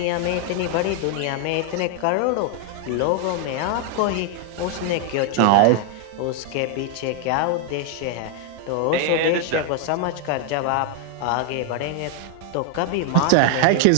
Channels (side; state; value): both; different; correlation 0.01